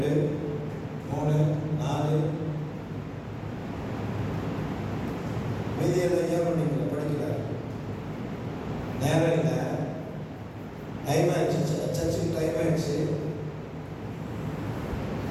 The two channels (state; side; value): identical; both; correlation 1.00